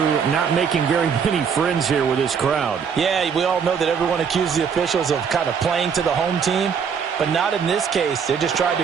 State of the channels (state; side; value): quieter; left; 6.7 dB